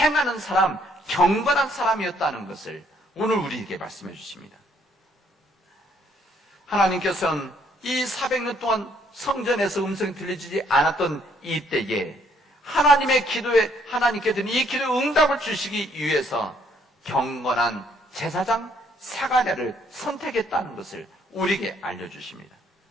사람, 경건한 사람이었다는 것을 오늘 우리에게 말씀해 주십니다. 하나님께서는 이 400년 동안 성전에서 음성이 들리지 않았던 이때에 하나님의 기도에 하나님께서는 이 기도에 응답을 주시기 위해서 경건한 제사장 사가랴를 선택했다는 것을 우리에게 알려주십니다.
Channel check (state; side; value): normal; both; correlation 0.67